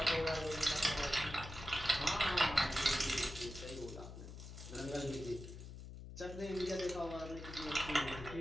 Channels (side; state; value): left; noise; hum, 11 dB below the sound